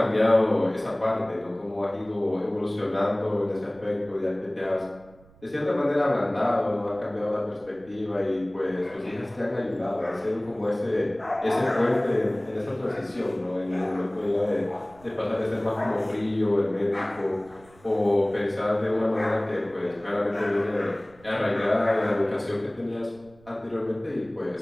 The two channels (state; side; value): noise; right; rumble, 26 dB below the sound